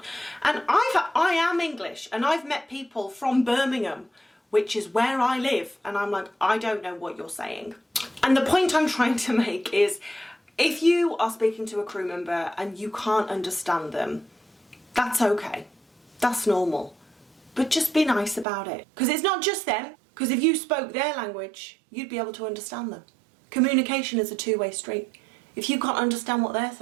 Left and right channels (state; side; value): drops out; left; at 18.4 s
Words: And I am English, and I've met people from Birmingham, which is where I live, and I'm like, I don't know what you're saying. And the point I'm trying to make is, if you are speaking to a crew member and you can't understand them, that's okay. That's normal, but just be nice about it. Because it's not just them, because if you spoke their language, you'd be able to understand them. Communication is a two-way street. If you can't understand what they're